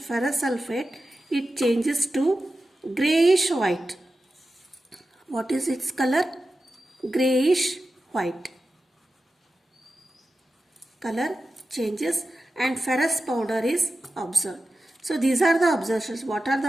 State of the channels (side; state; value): both; normal; correlation 0.92